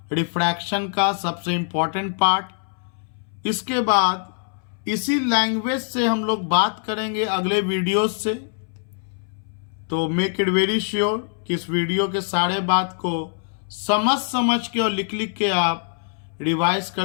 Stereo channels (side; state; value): right; silent; 63 dB below the other